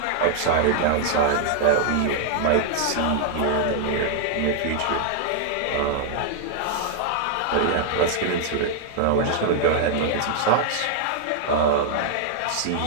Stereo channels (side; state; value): both; different; correlation 0.00